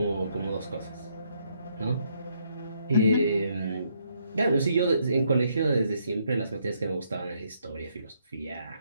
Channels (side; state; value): both; inverted; correlation -0.73